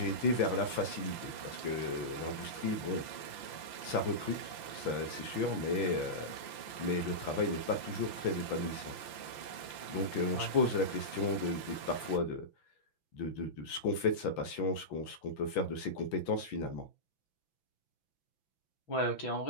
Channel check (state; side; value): late; right; 6.0 ms